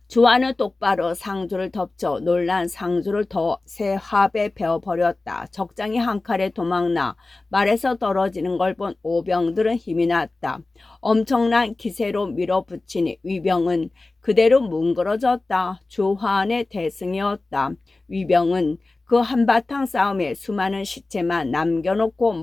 주한은 똑바로 상조를 덮쳐 놀란 상조를 더 새 합에 베어버렸다. 적장이 한 칼에 도망나 말에서 떨어지는 걸 본 오병들은 힘이 났다. 엄청난 기세로 밀어붙이니 위병은 그대로 뭉그러졌다. 주한의 대승이었다. 위병은 그 한바탕 싸움에 수많은 시체만 남겨놓고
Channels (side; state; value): right; quieter; 3.3 dB